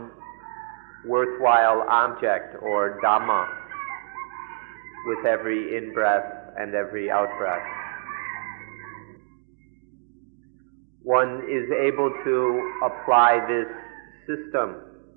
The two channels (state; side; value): silent; left; 61 dB below the other